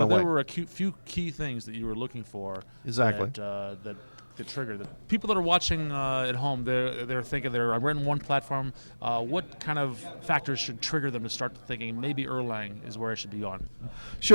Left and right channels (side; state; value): both; inverted; correlation -1.00